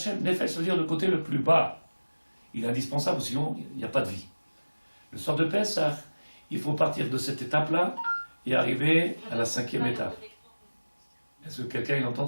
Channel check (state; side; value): inverted; both; correlation -1.00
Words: Nefesh veut dire le côté le plus bas. Il est indispensable, sinon il n'y a pas de vie. Le soir de Pessah, il faut partir de cette étape-là et arriver à la 5e étape. Est-ce que quelqu'un il entend